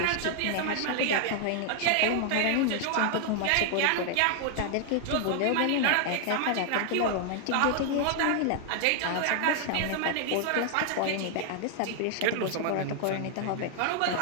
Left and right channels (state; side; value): different; both; correlation 0.00